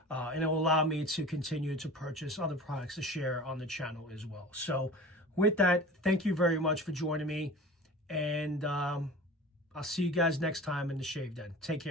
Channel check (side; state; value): both; normal; correlation 0.38